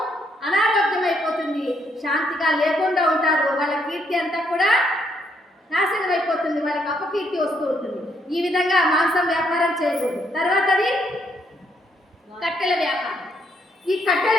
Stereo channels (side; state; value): both; normal; correlation 0.73